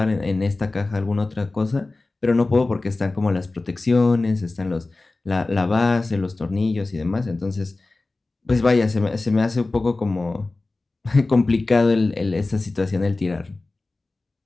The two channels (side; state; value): right; quieter; 3.3 dB